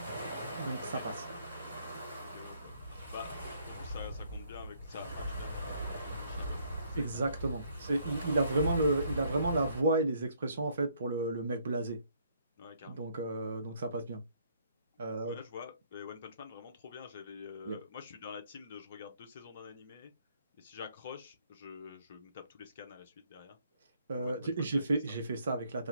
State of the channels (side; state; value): both; inverted; correlation -0.67